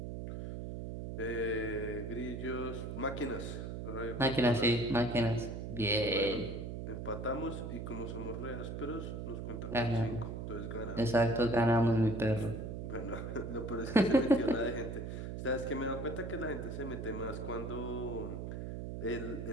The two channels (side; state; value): right; noise; hum, 6 dB below the sound